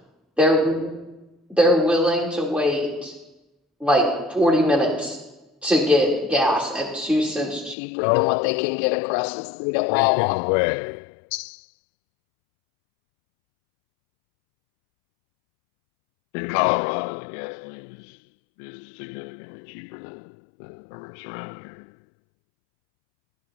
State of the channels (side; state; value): right; drops out; at 7.8 s